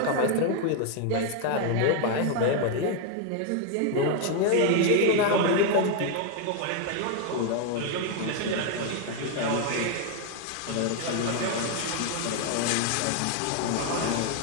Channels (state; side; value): different; both; correlation 0.01